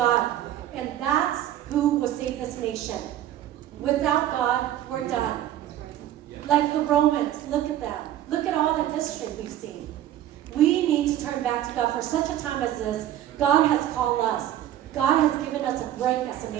And that's who will save this nation. Without God, we're done. Like the Romans, look at them. Look at all the history we've seen. We need to turn back to God for such a time as this. God has called us. God has given us a break as a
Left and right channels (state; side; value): quieter; left; 12.2 dB